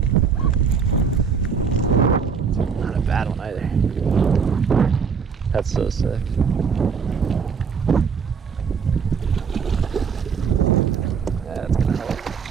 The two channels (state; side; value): quieter; left; 6.1 dB